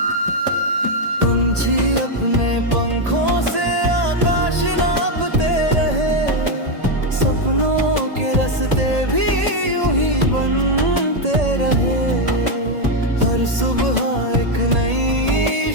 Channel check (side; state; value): left; late; 1.8 ms